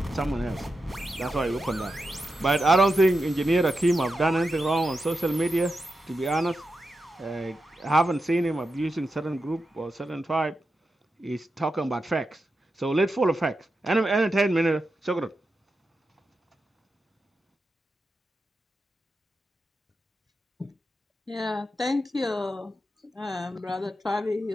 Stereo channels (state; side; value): normal; both; correlation 0.89